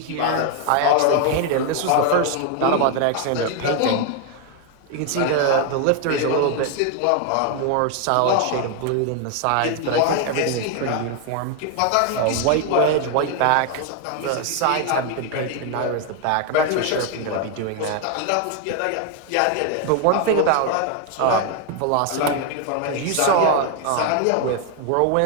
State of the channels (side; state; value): both; different; correlation 0.01